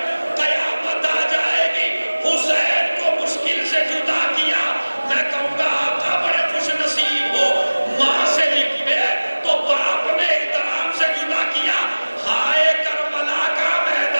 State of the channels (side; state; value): both; inverted; correlation -1.00